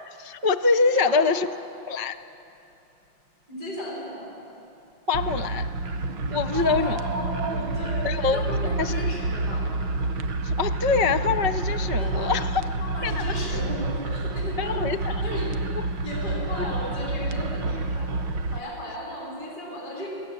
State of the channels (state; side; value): late; left; 5.6 ms